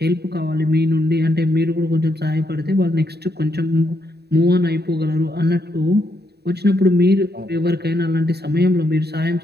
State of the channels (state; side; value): late; left; 0.48 ms